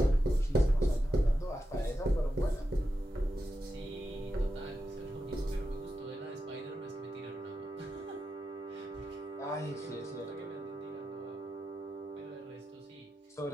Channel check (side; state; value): both; normal; correlation 0.89